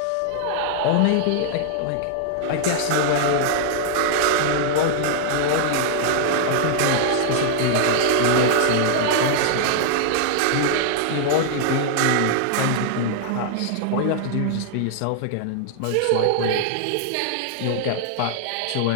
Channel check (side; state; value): both; different; correlation 0.00